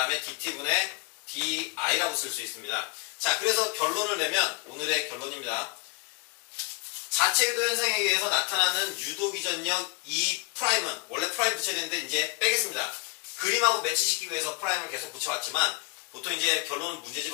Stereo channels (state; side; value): quieter; right; 27.1 dB